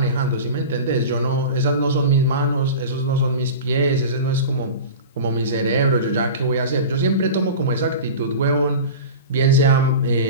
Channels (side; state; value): both; inverted; correlation -0.32